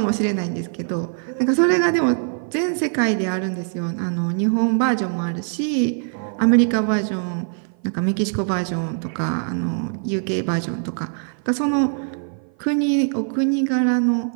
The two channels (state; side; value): silent; left; 55 dB below the other